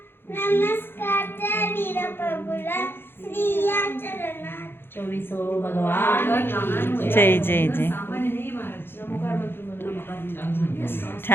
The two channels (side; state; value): right; late; 0.10 ms